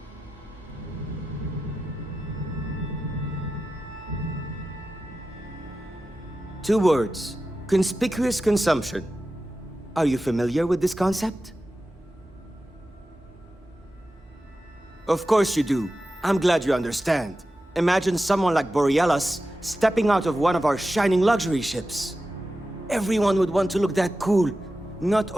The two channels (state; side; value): normal; both; correlation 0.93